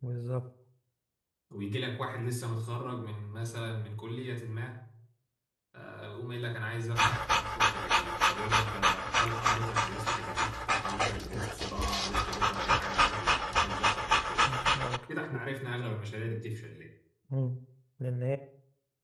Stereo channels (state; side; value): identical; both; correlation 1.00